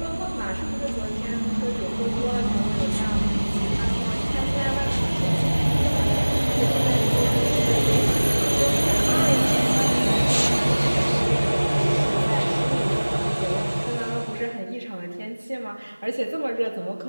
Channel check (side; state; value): both; inverted; correlation -1.00